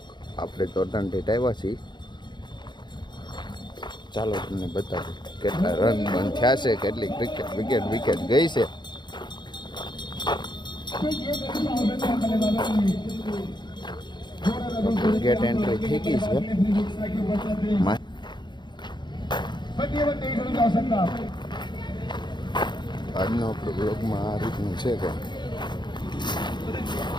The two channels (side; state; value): right; late; 0.22 ms